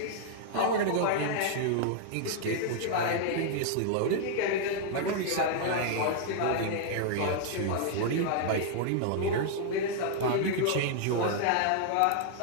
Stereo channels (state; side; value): different; both; correlation -0.01